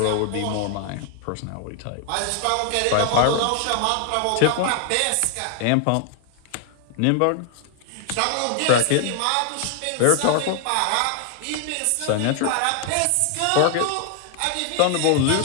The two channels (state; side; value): different; both; correlation 0.00